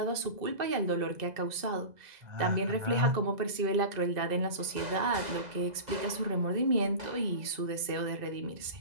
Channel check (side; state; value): left; late; 2.0 ms